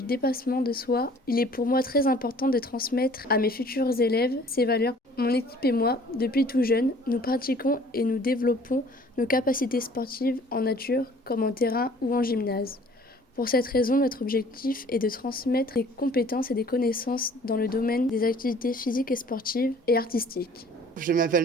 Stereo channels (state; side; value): normal; both; correlation 0.53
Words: dépassement de soi. Il est pour moi très important de transmettre à mes futurs élèves ces valeurs. Mon équipe et moi, depuis tout jeune, nous pratiquons et nous développons nos capacités sportives en nature comme en terrain ou en gymnase. Pour cette raison, notre objectif est de transmettre des compétences et des connaissances dans le domaine des activités physiques et sportives et artistiques. Je